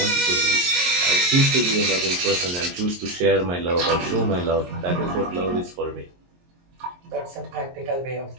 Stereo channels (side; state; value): left; late; 23 ms